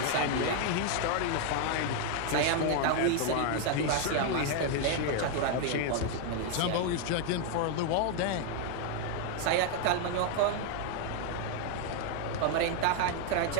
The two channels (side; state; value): both; different; correlation 0.00